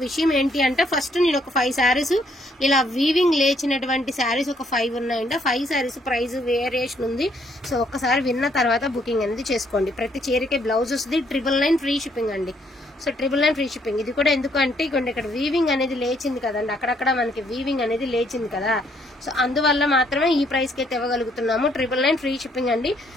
విషయం ఏంటి అంటే ఫస్ట్ నేను ఒక 5 శారీస్ ఇలా వీవింగ్ లేచినటువంటి శారీస్ ఒక 5 ఉన్నాయండి. 5 శారీస్ ప్రైస్ వేరియేషన్ ఉంది. సో ఒక్కసారి విన్న తర్వాత బుకింగ్ అనేది చేసుకోండి. ప్రతి చీరకే బ్లౌజ్ వస్తుంది. 999 ఫ్రీ షిప్పింగ్ అండి. So 999 free shipping. ఇది కూడా ఎందుకు అంటే ఇక్కడ వీవింగ్ అనేది లేచింది కదండి, అక్కడక్కడ మనకి వీవింగ్ అనేది లేచింది కదా. సో అందువల్ల మాత్రమే ఈ ప్రైస్ కి అయితే ఇవ్వగలుగుతున్నాము. 999 ఫ్రీ షిప్పింగ్ అండి.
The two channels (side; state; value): both; normal; correlation 0.69